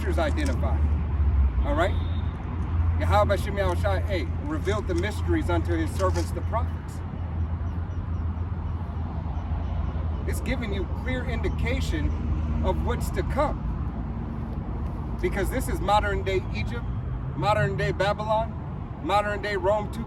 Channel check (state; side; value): identical; both; correlation 1.00